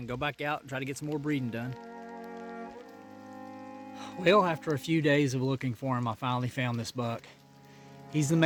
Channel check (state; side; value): identical; both; correlation 1.00